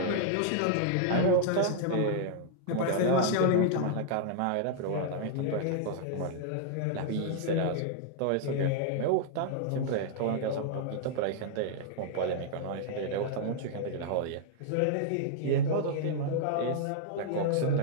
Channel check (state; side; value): different; both; correlation -0.01